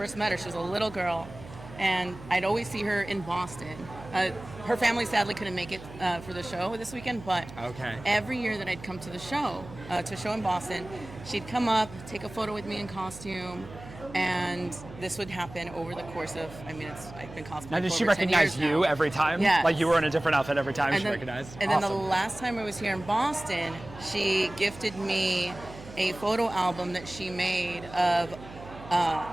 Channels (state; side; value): noise; right; hum, 16 dB below the sound